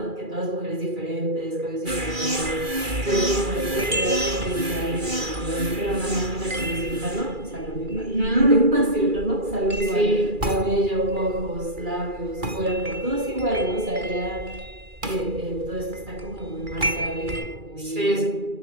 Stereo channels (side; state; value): left; late; 2.4 ms